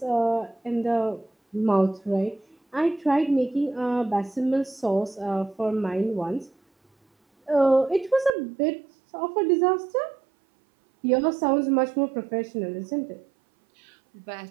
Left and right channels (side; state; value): left; drops out; at 8.3 s